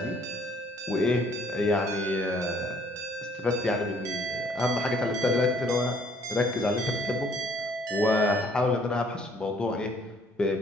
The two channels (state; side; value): normal; both; correlation 0.62